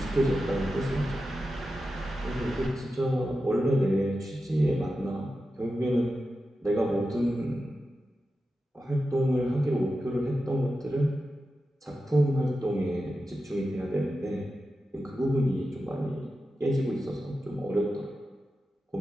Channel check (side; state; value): both; normal; correlation 0.91